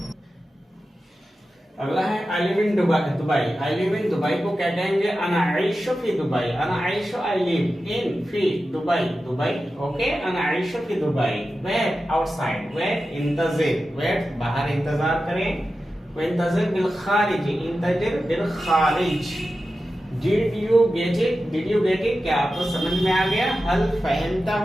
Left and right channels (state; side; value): normal; both; correlation 0.92